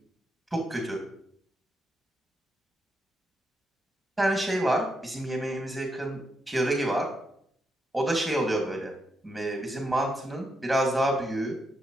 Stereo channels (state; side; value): normal; both; correlation 0.82